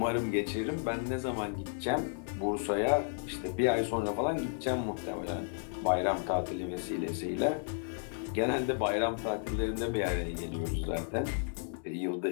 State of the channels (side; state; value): right; silent; 56 dB below the other